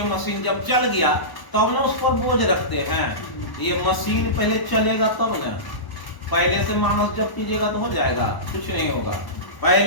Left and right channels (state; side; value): late; right; 1.1 ms